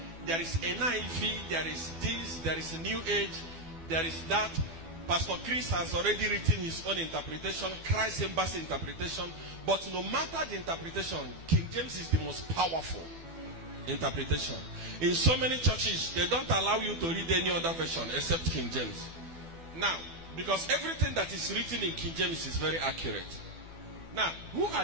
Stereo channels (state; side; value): late; left; 12 ms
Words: is NIV, there is this, there is a New Age, there is that. Pastor Chris has already written his own interpretation, Christ Embassy interpretation. But no matter the interpretation, King James is the most powerful interpretation. In so many churches, they don't allow you to read any other version except King James. Now, because everything that is written in King James is very accurate. Now, who